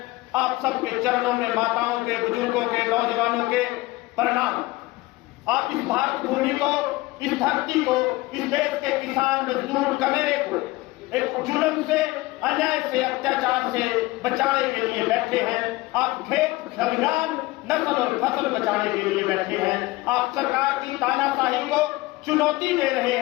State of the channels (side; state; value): right; quieter; 20.1 dB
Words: आप सबके चरणों में माताओं के, बुजुर्गों के, नौजवानों के प्रणाम। आप इस भारत भूमि को, इस धरती को, इस देश के किसान मजदूर कमेरे को एक जुल्म से, अन्याय से, अत्याचार से बचाने के लिए बैठे हैं। आप खेत खलिहान, नस्ल और फसल बचाने के लिए बैठे हैं। आप सरकार की तानाशाही को चुनौती दे रहे